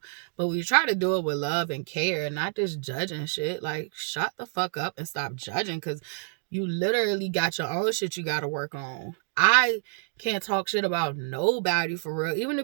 but we try to do it with love and care, not just judging shit. Like, shut the fuck up and stop judging, because you literally got your own shit you got to work on. I can't talk shit about nobody for real. Even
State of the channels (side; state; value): left; silent; digital silence